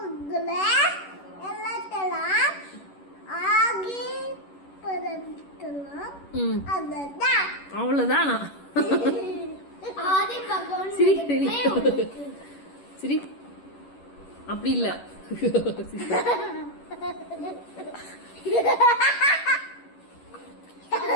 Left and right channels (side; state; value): right; late; 11 ms